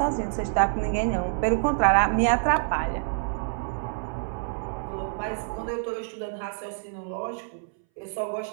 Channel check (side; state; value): left; silent; 60 dB below the other